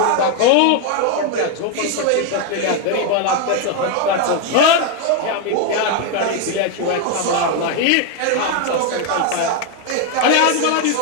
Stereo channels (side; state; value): both; different; correlation 0.01